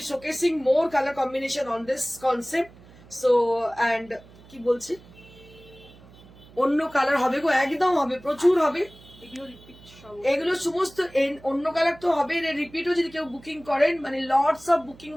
showcasing more colour combination on this concept. So and কি বলছি, অন্য কালার হবে গো, একদম হবে, প্রচুর হবে। এগুলো সমস্ত অন্য কালার তো হবে, রিপিটও যদি কেউ বুকিং করেন, মানে lots of booking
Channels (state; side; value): noise; right; hum, 23 dB below the sound